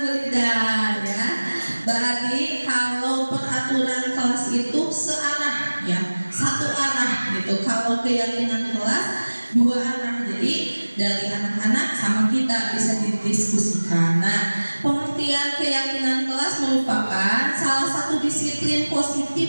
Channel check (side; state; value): both; inverted; correlation -1.00